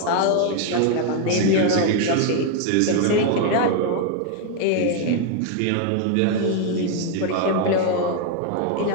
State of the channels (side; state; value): both; different; correlation 0.01